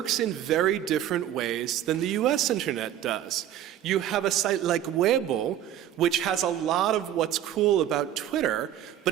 in very different ways than the US internet does. You have a site like Weibo, which has a lot of what's cool about Twitter,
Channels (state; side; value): quieter; left; 11.3 dB